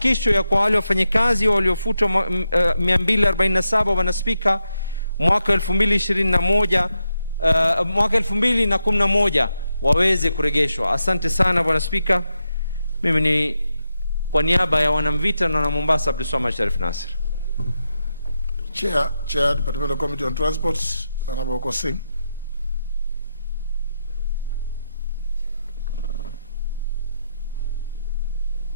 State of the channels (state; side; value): inverted; both; correlation -0.85